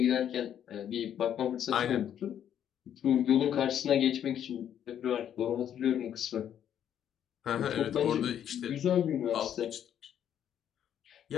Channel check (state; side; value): quieter; right; 9.8 dB